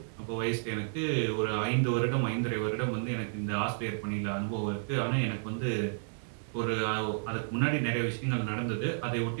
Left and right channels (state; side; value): silent; left; digital silence